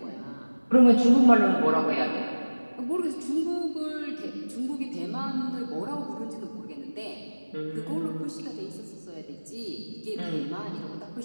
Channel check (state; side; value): inverted; both; correlation -1.00